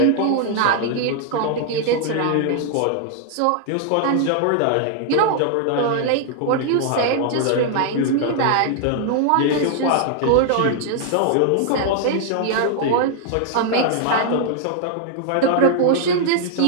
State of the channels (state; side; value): different; both; correlation 0.00